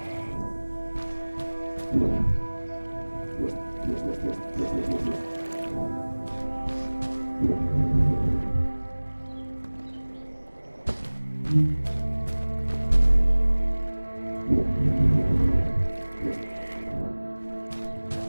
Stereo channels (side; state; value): both; inverted; correlation -1.00